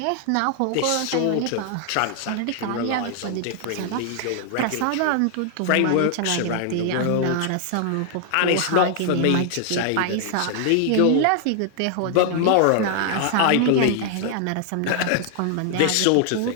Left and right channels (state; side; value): different; both; correlation 0.00